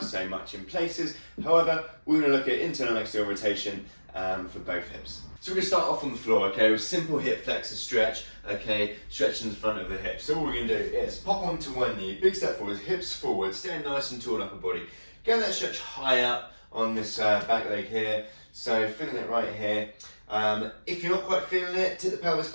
much in places. However, we're going to look at internal and external rotation for both hips. So we're going to start off on the floor, okay, with simple hip flexor stretch, okay, stretching the front of the hip. So all we're going to do is pop onto one knee, big step forward, hips forward, stand nice and tall upper body. Get that stretch high up on this back leg here, so feeling it right here. If you're not quite feeling it, tip the pelvis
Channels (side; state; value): both; inverted; correlation -1.00